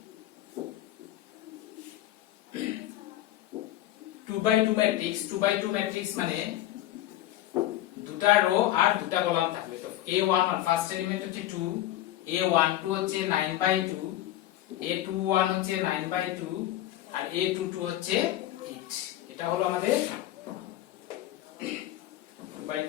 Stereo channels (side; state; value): right; quieter; 13.9 dB